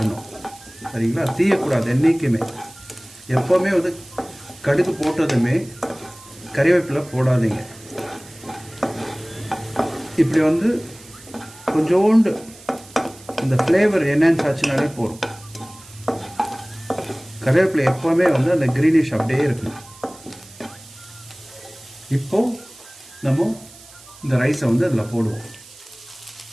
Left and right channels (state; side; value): noise; right; hiss, 21 dB below the sound